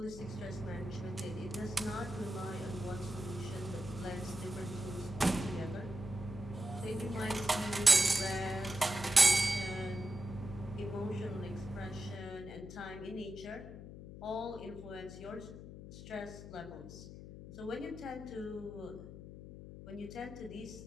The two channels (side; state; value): left; noise; hum, 12 dB below the sound